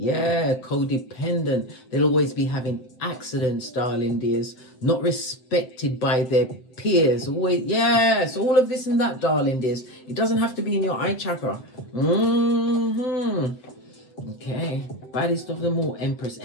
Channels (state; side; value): late; right; 7.8 ms